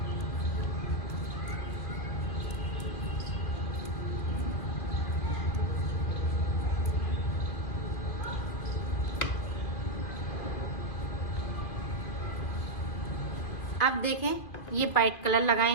अब देखें ये वाइट कलर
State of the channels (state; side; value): late; right; 2.4 ms